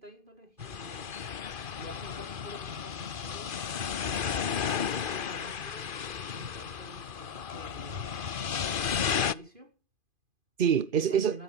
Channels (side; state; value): left; late; 2.4 ms